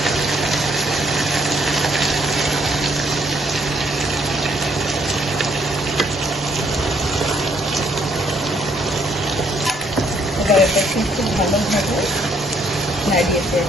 এবার এটাকে খুব ভালোভাবে নাড়িয়ে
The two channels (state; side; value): normal; both; correlation 0.68